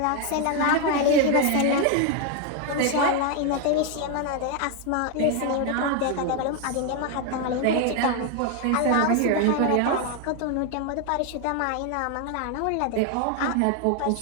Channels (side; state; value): both; different; correlation 0.01